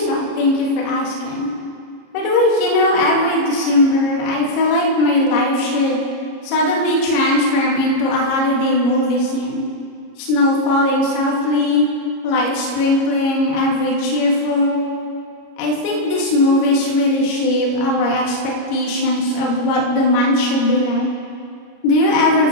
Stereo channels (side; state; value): right; late; 33 ms